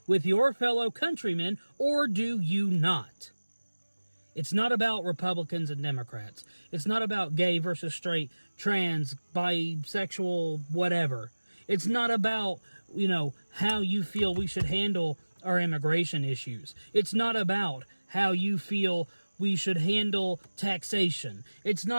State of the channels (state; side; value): inverted; both; correlation -1.00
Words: with your fellow countrymen, or do you not? It's not about Republicans and Democrats. It's not about gay versus straight, trans, bisexual, whatever. It's not about, how you feel we should handle our immigration issues. It's not about how you feel we should handle taxation. It's